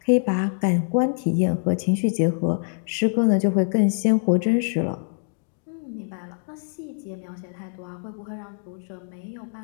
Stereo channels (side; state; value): right; silent; digital silence